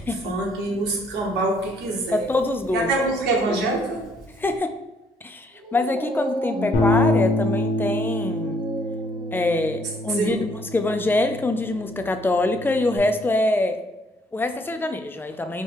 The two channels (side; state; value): both; normal; correlation 0.66